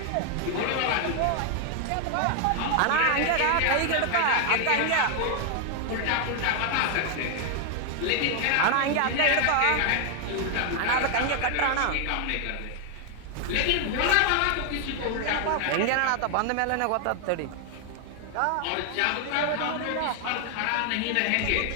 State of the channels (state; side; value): different; both; correlation 0.00